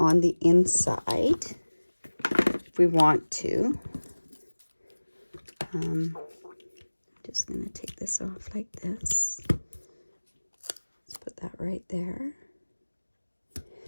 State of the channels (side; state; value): both; inverted; correlation -1.00